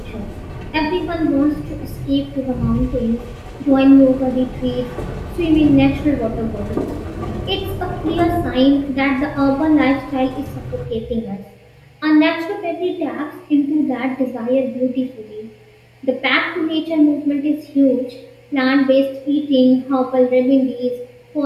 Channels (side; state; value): both; identical; correlation 1.00